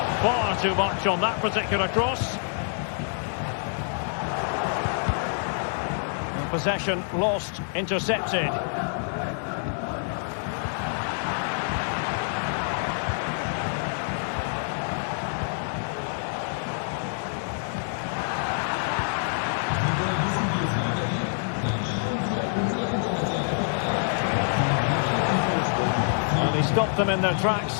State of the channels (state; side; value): silent; right; digital silence